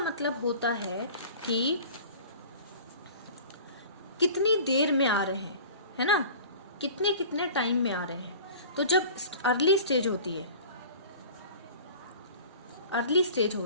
होता है कि कितनी देर में आ रहे हैं, है ना, कितने कितने टाइम में आ रहे हैं। तो जब अर्ली स्टेज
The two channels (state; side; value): inverted; both; correlation -0.42